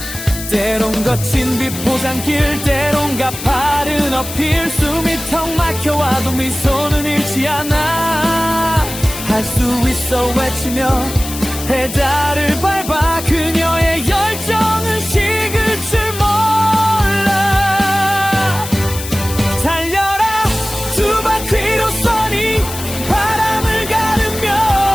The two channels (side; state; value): left; noise; hiss, 10 dB below the sound